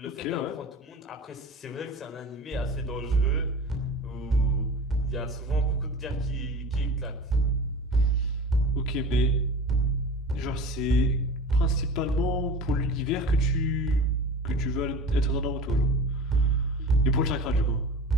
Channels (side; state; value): both; normal; correlation 0.36